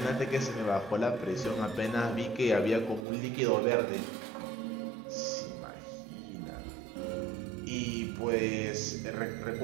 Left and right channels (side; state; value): left; drops out; at 3.1 s